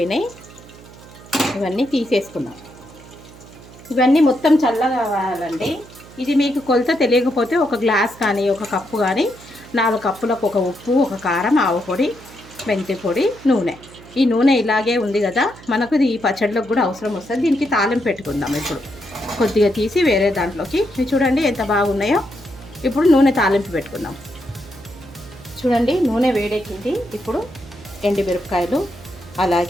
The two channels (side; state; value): right; noise; hum, 20 dB below the sound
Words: ఇవన్నీ తీసేసుకుందాం. ఇవన్నీ మొత్తం చల్లగా కావాలండి. ఇది మీకు కొలత తెలియకపోతే ఒక గ్లాస్ కానీ ఒక కప్పు కానీ 4 కప్పులకు ఒక ఉప్పు, ఒక కారం, ఆవు పొడి, మెంతి పొడి, నూనె. ఈ నూనె ఇలాగే ఉంది కదా, మనకు ఈ పచ్చడిలోకి కూడా అవసరం వస్తుంది. దీనికి తాలింపు పెట్టుకుందాం. ఇప్పుడు కొద్దిగా తీసి వేరే దాంట్లోకి, చూడండి ఎంత బాగున్నాయో. ఇప్పుడు నూనె తాలింపు పెట్టుకుందాం. చూడండి నూనె వేడెక్కింది. ఇప్పుడు ఎండుమిరపకాయలు,